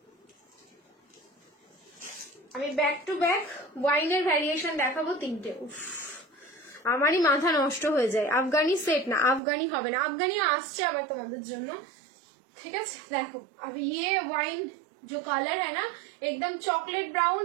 আমি ব্যাক টু ব্যাক ওয়াইনের ভ্যারিয়েশন দেখাবো 3টে। আমারই মাথা নষ্ট হয়ে যায়। আফগানি সেট না, আফগানি হবে না, আফগানি আসছে আবার তোমাদের জন্য, ঠিক আছে। দেখো अब ये वाइन जो कलर है ना एकदम चॉकलेट ब्राउन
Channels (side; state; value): left; drops out; at 9.4 s